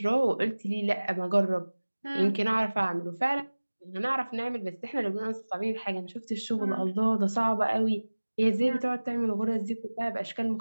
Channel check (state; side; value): inverted; both; correlation -1.00